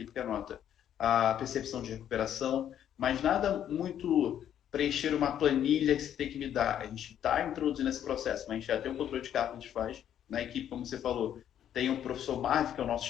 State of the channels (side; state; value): right; quieter; 10.2 dB